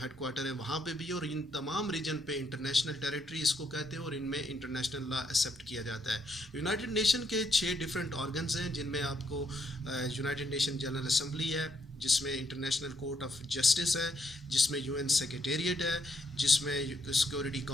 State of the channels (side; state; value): both; normal; correlation 0.75